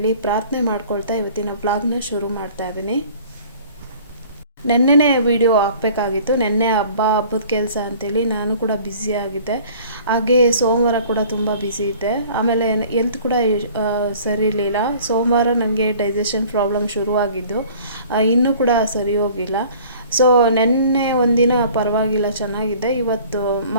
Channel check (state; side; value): inverted; both; correlation -0.49